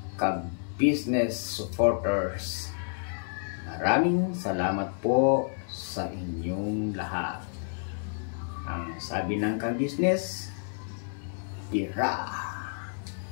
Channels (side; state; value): right; silent; digital silence